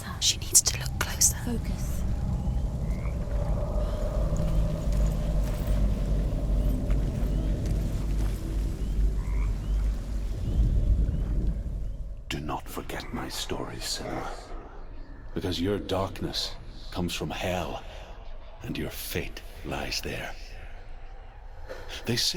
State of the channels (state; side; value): identical; both; correlation 1.00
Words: She needs to look closer. Focus. Do not forget my story, Senua. Because your darkness comes from hell, and your fate lies there. They